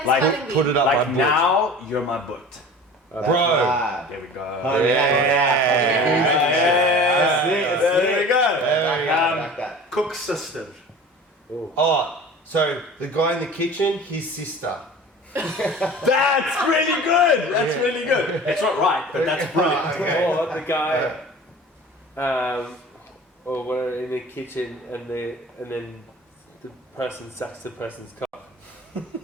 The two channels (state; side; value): normal; both; correlation 0.40